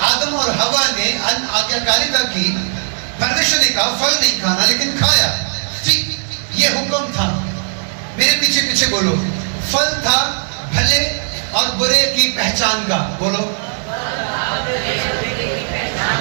आदम और हवा ने आज्ञाकारिता की, परमेश्वर ने कहा फल नहीं खाना, लेकिन खाया। ठीक, ये हुक्म था। मेरे पीछे पीछे बोलो, फल था भले और बुरे की पहचान का। बोलो,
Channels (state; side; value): silent; left; digital silence